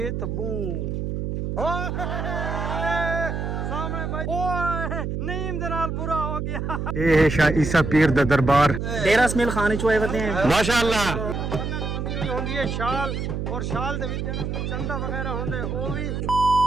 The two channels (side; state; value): right; noise; hum, 3 dB below the sound